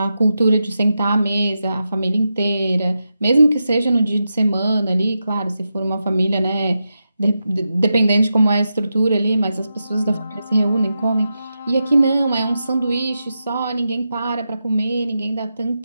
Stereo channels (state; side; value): inverted; both; correlation -0.89